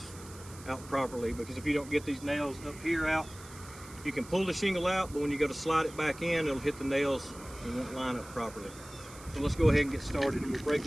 out properly. Because if you don't get these nails up here out, you can pull the shingle out, but when you go to slide it back in, it'll hit the nails and won't line up properly. So let's go ahead and get started, and we'll break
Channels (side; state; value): right; noise; hiss, 18 dB below the sound